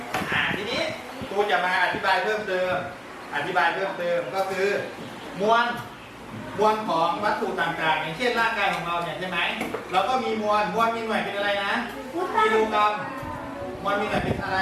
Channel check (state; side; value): identical; both; correlation 1.00